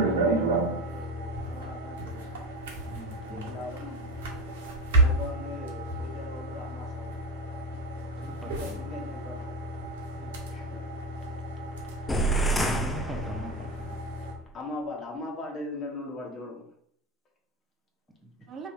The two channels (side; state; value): both; normal; correlation 0.19